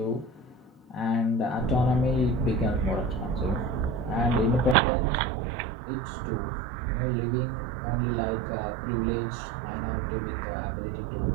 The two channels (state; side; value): drops out; left; at 4.8 s